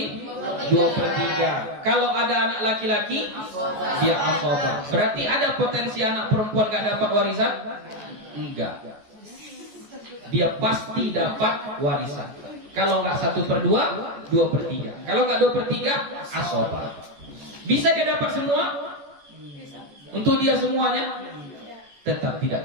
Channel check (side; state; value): left; late; 14 ms